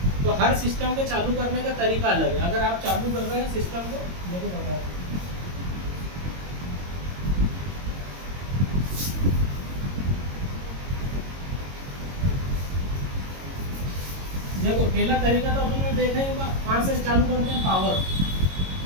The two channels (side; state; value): left; late; 22 ms